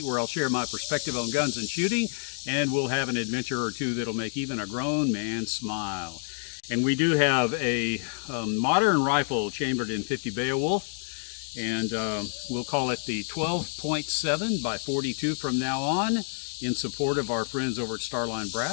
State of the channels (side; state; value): right; silent; 59 dB below the other